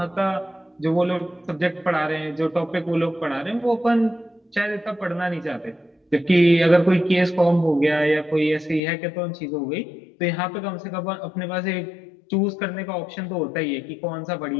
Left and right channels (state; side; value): drops out; right; at 8.8 s